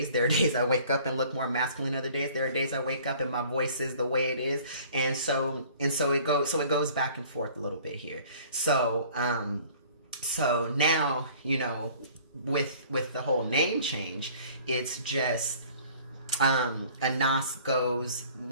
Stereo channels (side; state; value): both; inverted; correlation -0.51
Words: There are days I wake up and look more masculine other days. There are days I wake up and my voice is the way it is. And so it goes back and forth a little bit here. So now, you know, with the whole name change, it's just Anas goes